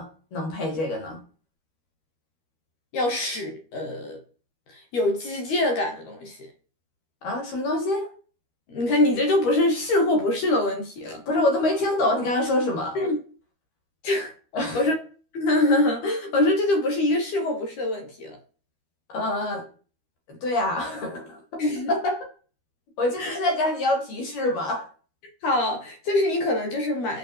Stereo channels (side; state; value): right; late; 13 ms